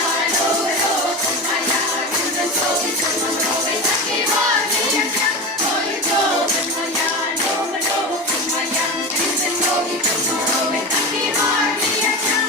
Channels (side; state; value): both; normal; correlation 0.25